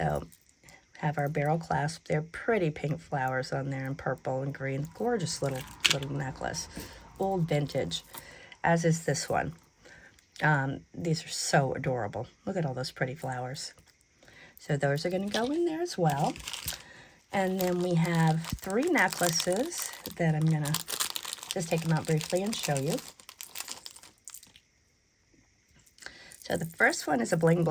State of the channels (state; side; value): identical; both; correlation 1.00